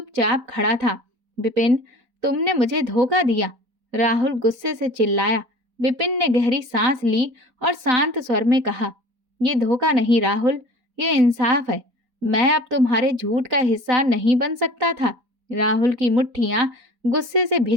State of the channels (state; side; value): late; left; 4.3 ms